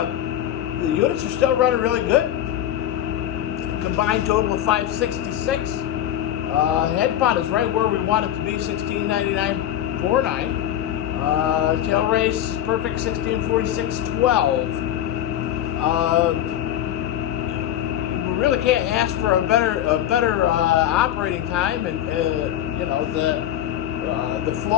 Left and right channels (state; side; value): quieter; right; 11.5 dB